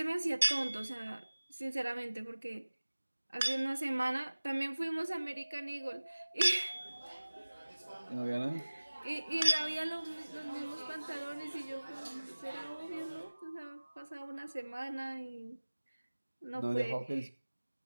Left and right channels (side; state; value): both; inverted; correlation -1.00